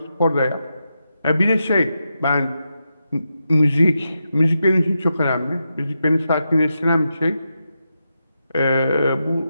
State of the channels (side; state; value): both; inverted; correlation -0.87